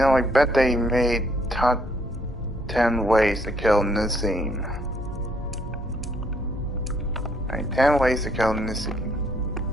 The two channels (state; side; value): normal; both; correlation 0.68